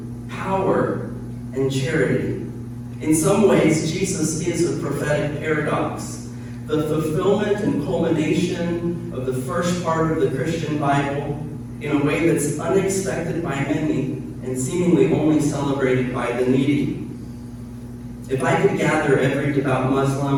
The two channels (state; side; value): identical; both; correlation 1.00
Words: power and charity. In some ways, Jesus is a prophetic paradox, the fulfillment and culmination of the first part of the Christian Bible in a way that's unexpected by many and seemingly only celebrated by the needy. If I could gather every devout